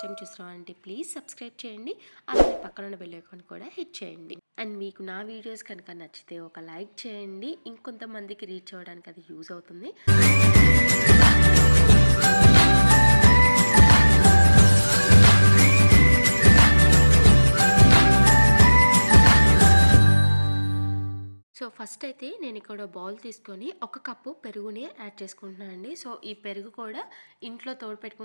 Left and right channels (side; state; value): both; inverted; correlation -1.00